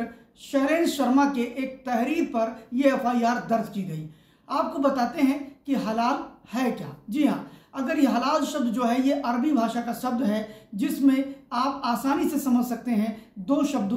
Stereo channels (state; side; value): identical; both; correlation 1.00